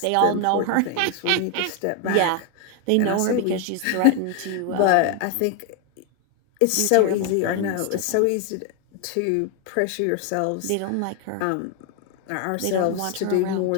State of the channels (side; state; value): both; different; correlation 0.00